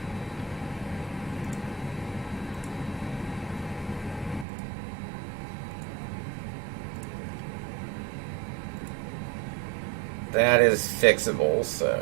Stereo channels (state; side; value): drops out; left; at 4.5 s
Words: That is fixable,